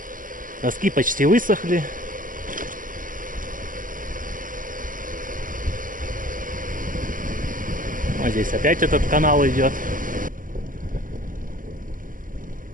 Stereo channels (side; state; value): left; late; 0.39 ms